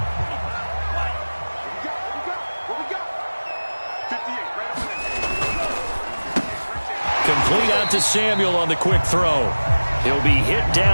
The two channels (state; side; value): inverted; both; correlation -1.00